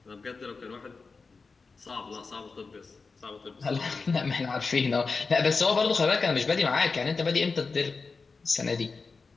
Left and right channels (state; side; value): quieter; right; 4.4 dB